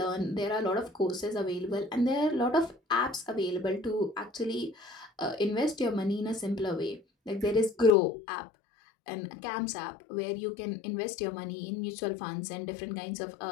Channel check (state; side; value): drops out; right; at 7.9 s